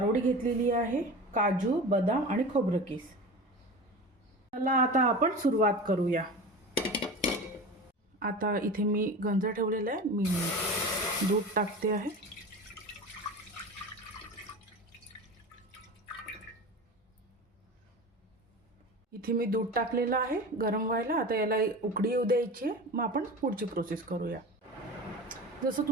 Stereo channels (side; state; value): both; normal; correlation 0.32